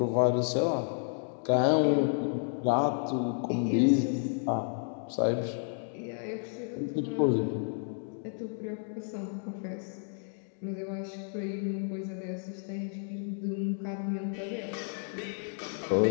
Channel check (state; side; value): silent; right; 57 dB below the other